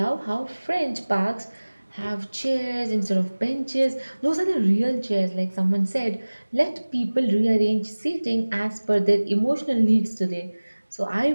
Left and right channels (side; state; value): both; inverted; correlation -1.00